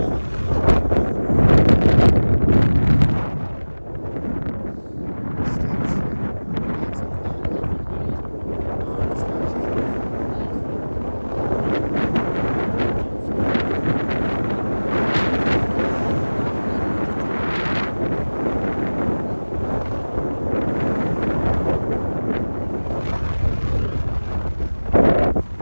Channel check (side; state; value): both; inverted; correlation -1.00